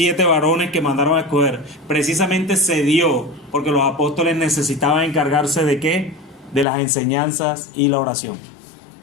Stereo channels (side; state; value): right; drops out; at 6.7 s